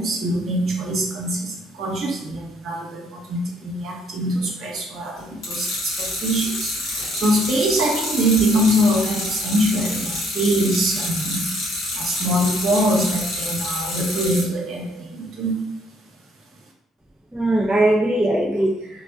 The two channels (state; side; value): normal; both; correlation 0.66